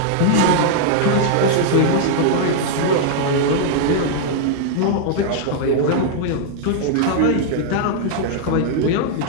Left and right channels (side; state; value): both; different; correlation -0.01